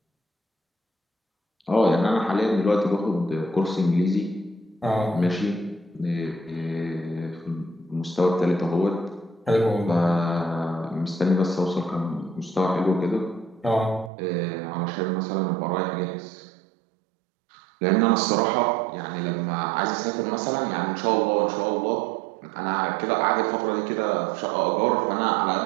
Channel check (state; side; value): drops out; left; at 14.1 s